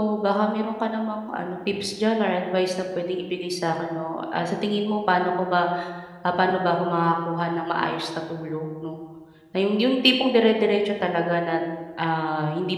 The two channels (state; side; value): identical; both; correlation 1.00